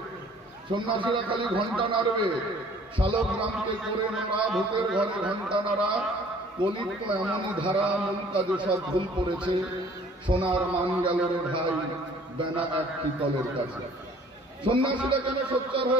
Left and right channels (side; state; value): both; normal; correlation 0.54